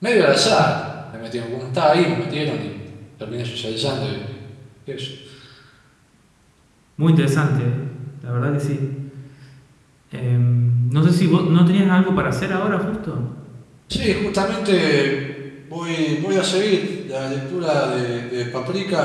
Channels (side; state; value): both; identical; correlation 1.00